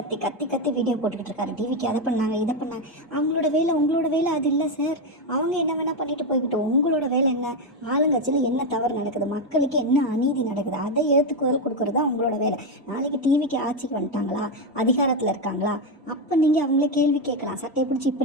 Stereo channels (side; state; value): both; normal; correlation 0.08